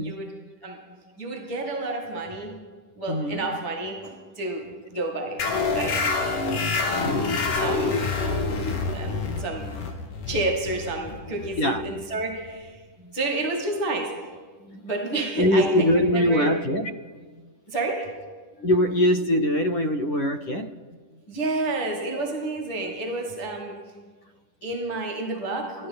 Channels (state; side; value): late; right; 10 ms